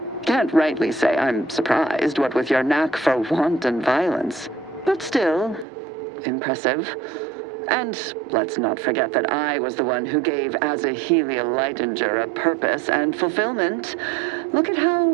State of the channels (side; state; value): left; drops out; at 5.7 s